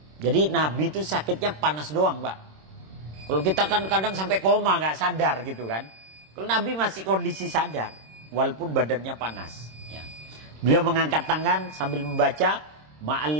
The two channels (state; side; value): late; left; 26 ms